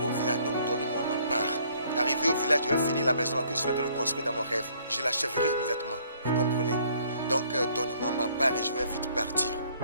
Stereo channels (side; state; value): both; inverted; correlation -0.62